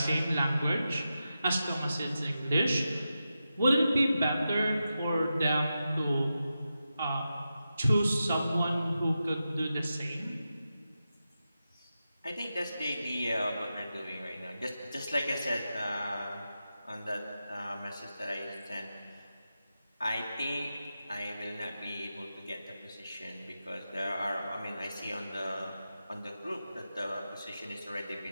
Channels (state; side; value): inverted; both; correlation -0.90